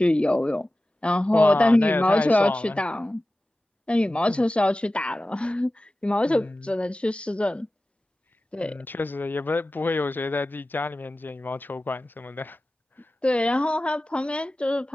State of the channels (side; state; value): both; normal; correlation 0.95